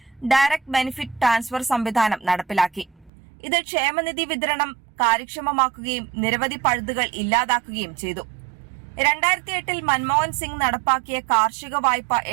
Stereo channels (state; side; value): drops out; left; at 3.1 s